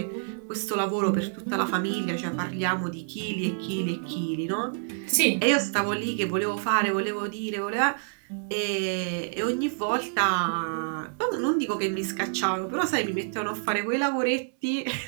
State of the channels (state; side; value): silent; left; 60 dB below the other